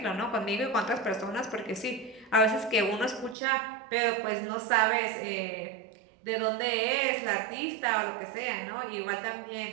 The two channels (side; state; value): left; drops out; at 3.4 s